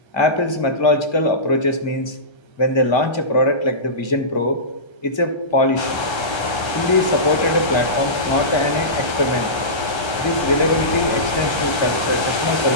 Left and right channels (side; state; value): right; late; 1.3 ms